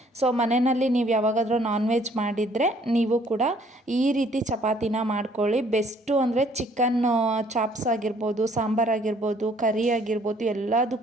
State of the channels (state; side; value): normal; both; correlation 0.61